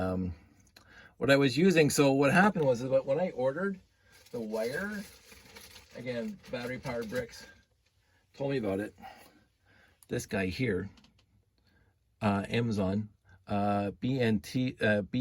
What I was using, so what happened was that when I ordered the wire, again, battery powered bricks, told me about it. This guy here, Amazon, BNT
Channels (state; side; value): identical; both; correlation 1.00